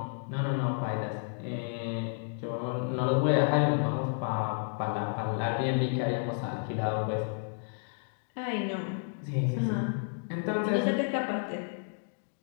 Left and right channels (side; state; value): right; silent; digital silence